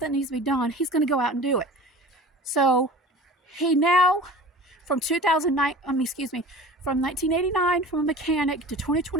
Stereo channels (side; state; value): both; normal; correlation 0.39